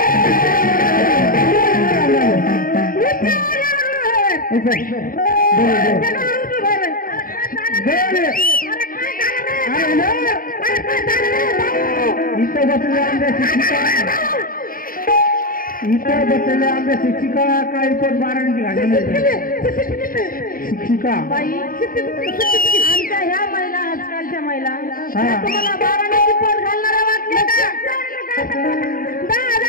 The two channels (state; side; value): late; right; 0.41 ms